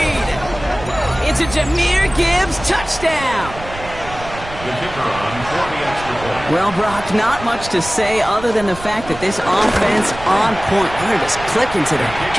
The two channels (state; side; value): noise; right; rumble, 13 dB below the sound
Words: It's a Jahmyr Gibbs touchdown. The kicker on for the extra point. Well, Brock, not much to say other than the fact that this offense on point. They're just clicking today.